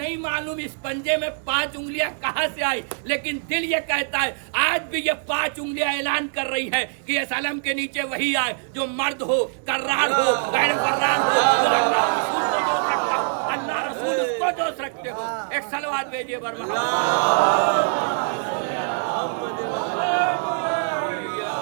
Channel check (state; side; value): silent; left; 63 dB below the other